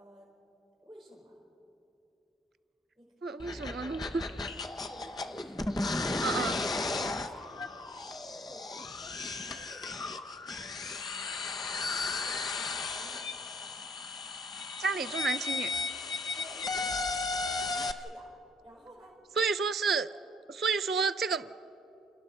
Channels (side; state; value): both; normal; correlation 0.60